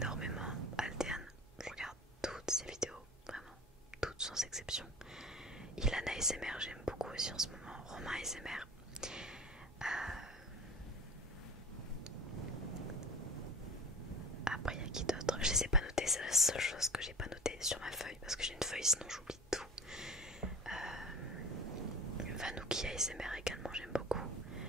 Altean, je regarde toutes ses vidéos, vraiment, toutes sans exception. Ilan ASMR j'aime beaucoup aussi en ce moment, Romain ASMR. Après il y a qui d'autre? Je les ai pas notés, c'est la seule chose que j'ai pas notée sur ma feuille parce que j'ai une feuille sinon j'oublie tout. Vanouki ASMR également j'aime beaucoup.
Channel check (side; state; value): both; normal; correlation 0.38